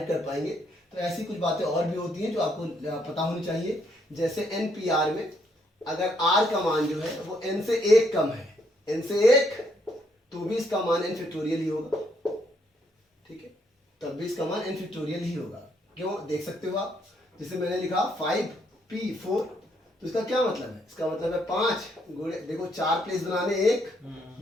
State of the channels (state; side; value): normal; both; correlation 0.72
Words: कर पाएंगे। तो ऐसी कुछ बातें और भी होती हैं जो आपको पता होनी चाहिए। जैसे NPR में अगर r का मान जो है वो n से 1 कम है, n से 1, तो भी इसका मान n फैक्टोरियल ही होगा, ठीक है, तब भी इसका मान n फैक्टोरियल ही होगा। क्यों, देख सकते हो आप, जैसे मैंने लिखा 5p4 तो इसका क्या मतलब है? इसका मतलब है 5 गुणे, देखो 4 प्लेस बनाने, 1